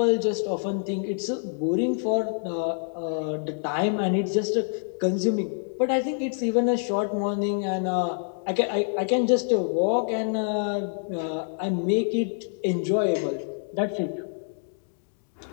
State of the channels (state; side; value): silent; right; digital silence